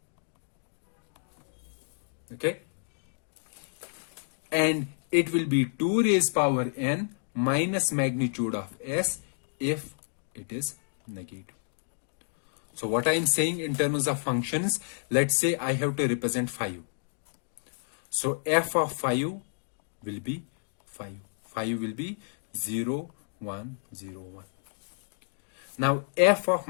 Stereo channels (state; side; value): silent; right; digital silence